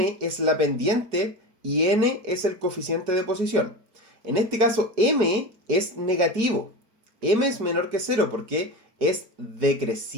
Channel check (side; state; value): left; late; 4.7 ms